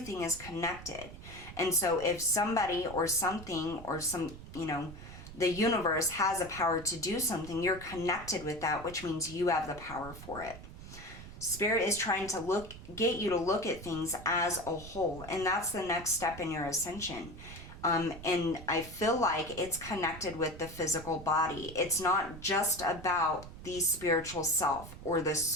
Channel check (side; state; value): right; noise; rumble, 14 dB below the sound